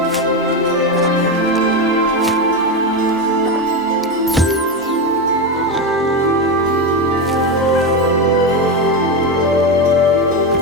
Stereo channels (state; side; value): normal; both; correlation 0.14